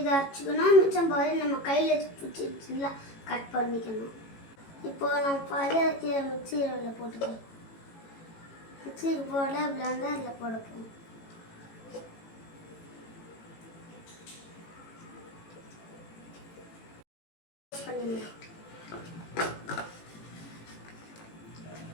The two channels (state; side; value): late; right; 18 ms